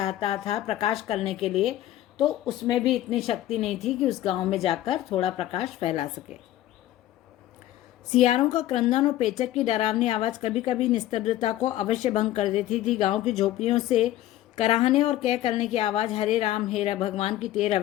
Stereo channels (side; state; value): right; quieter; 13.9 dB